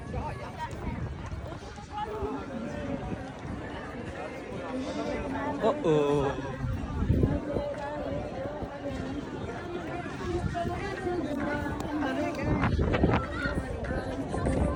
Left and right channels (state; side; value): identical; both; correlation 1.00